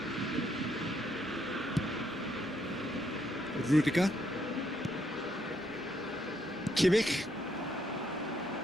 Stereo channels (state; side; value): normal; both; correlation 0.73